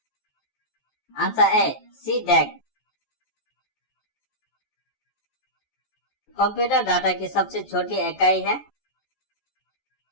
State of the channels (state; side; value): late; right; 14 ms